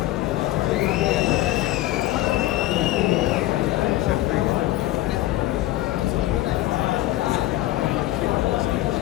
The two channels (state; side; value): quieter; right; 16.1 dB